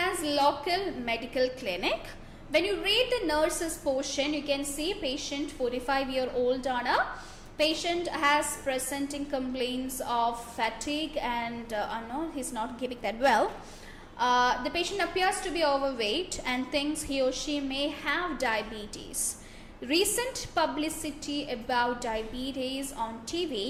as local medical clinic. When you read the nurses portion, you can see patient 45-year-old Anna. Patient has presenting complaints of fatigue and no, he's not giving that well. The patient appears to be overweight and thinks he or she may have diabetes. Recent publicity about diabetes on TV,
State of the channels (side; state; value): both; identical; correlation 1.00